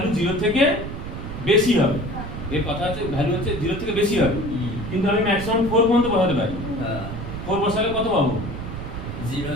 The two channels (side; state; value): right; noise; rumble, 8 dB below the sound